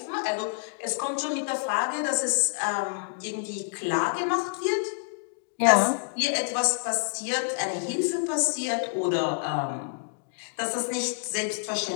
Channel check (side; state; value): right; silent; digital silence